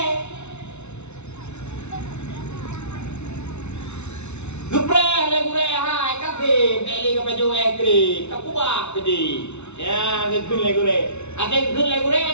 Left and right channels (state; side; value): late; right; 0.81 ms